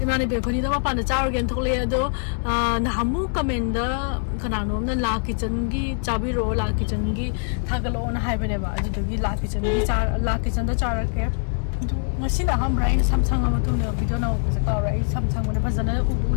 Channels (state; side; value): silent; right; 63 dB below the other